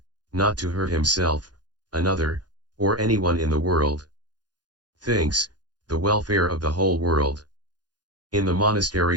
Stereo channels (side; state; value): left; late; 0.69 ms